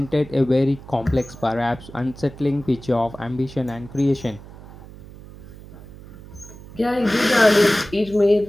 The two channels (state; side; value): noise; right; hum, 17 dB below the sound